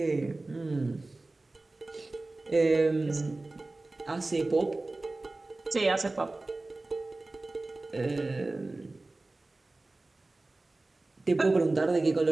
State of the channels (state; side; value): quieter; left; 3.1 dB